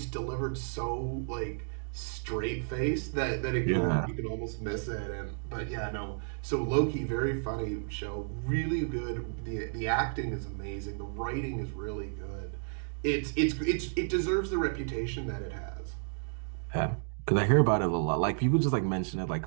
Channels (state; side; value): silent; left; digital silence